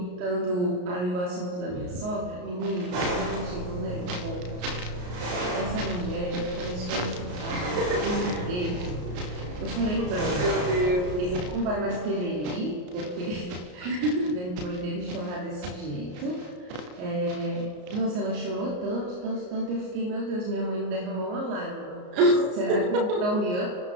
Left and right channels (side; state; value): left; late; 33 ms